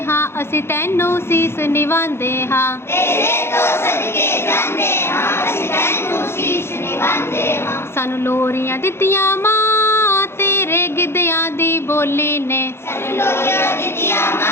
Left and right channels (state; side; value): late; right; 0.12 ms